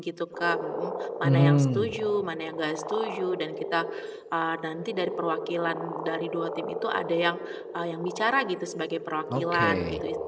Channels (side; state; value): both; identical; correlation 1.00